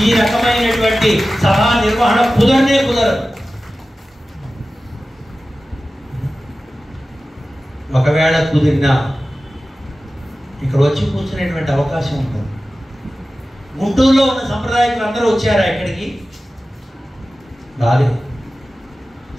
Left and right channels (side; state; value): both; normal; correlation 0.95